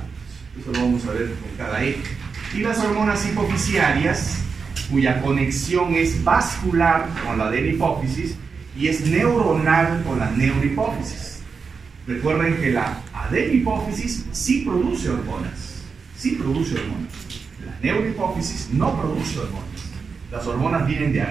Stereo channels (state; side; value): quieter; left; 5.3 dB